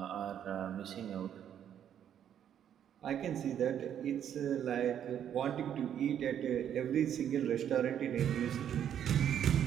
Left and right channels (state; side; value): quieter; left; 9.6 dB